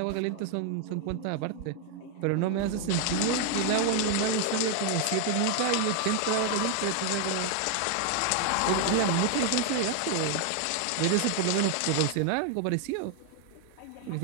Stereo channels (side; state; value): both; different; correlation 0.00